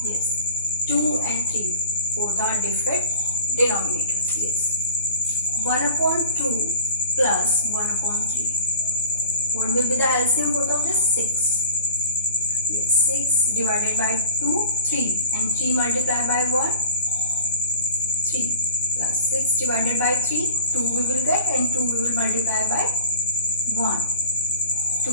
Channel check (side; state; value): both; inverted; correlation -0.38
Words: Yes. 2 and 3, both are different denominators. Yes. 1 upon 2 plus 1 upon 3. What will be the LCM both of this? 6. Yes, 6 divided by 2, 3, and 3 multiplied by 1, 3, plus 6 divided by 3, 2 we will get, and 2 we will multiply by 1, 2.